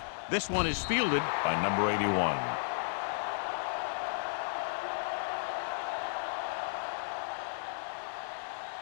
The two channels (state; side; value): silent; right; digital silence